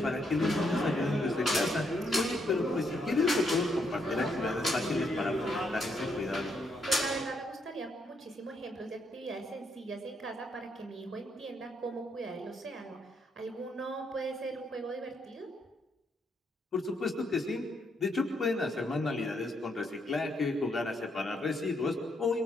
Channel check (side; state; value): both; normal; correlation 0.76